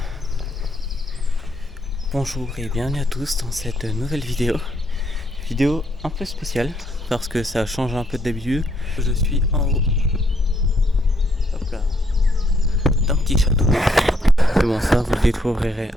Bonjour et bienvenue à tous dans cette nouvelle vidéo. Vidéo un peu spéciale parce que ça change un peu d'habitude. Je suis en haut, hop là, d'un petit château. Mais bon, ça vous le découvrirez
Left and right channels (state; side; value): normal; both; correlation 0.73